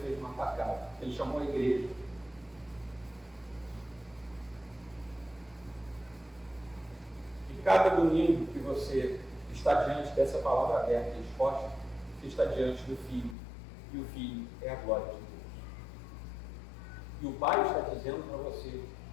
fez uma atacada. Ele chamou a igreja. E cada domingo que você está diante dessa palavra aberta e exposta, você está diante do Filho. E o Filho é a glória de Deus. E o Pai está dizendo para você:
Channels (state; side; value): drops out; right; at 13.4 s